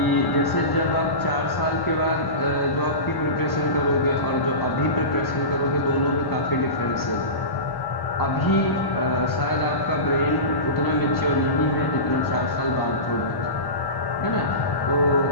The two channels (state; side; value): late; right; 1.1 ms